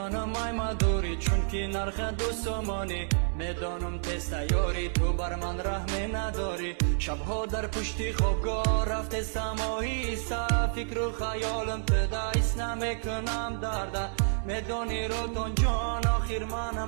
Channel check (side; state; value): left; silent; digital silence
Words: ای مدوری چون که نرخ دوستمانی میدانم تست یاری تو بر من رحمی نداری شبها در پشتی خوابگاه رفته سماهی فکر و خیالم تدایست نمیکنم درده میدانی رالتان جان آخر